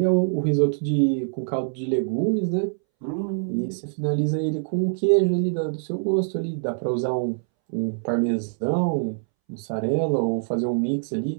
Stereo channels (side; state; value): left; silent; 62 dB below the other